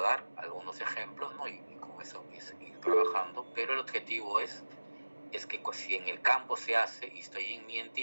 algunos ejemplos, ¿no? Y con eso ir trabajando, pero el objetivo es que pues, si en el campo se hace y estoy en mi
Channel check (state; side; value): inverted; both; correlation -1.00